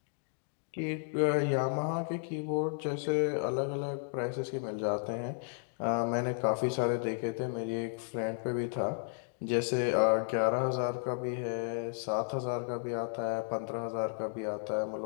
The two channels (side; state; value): right; silent; digital silence